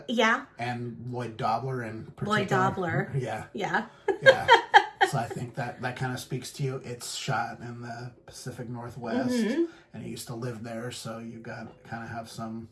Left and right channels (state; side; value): identical; both; correlation 1.00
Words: Yeah. And Lloyd Dobler in particular. Lloyd Dobler. Yeah. Yeah. Yeah. So I think that kind of speaks to you. It's shot in the Pacific Northwest, and you used to live there, so you got kind of have some...